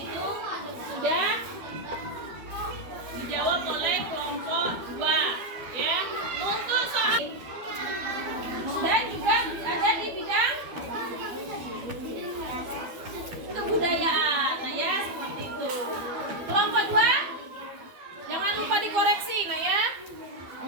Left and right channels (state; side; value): late; left; 12 ms